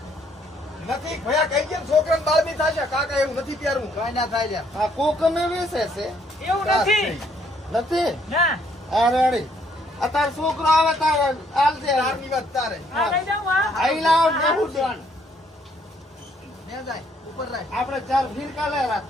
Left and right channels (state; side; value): normal; both; correlation 0.67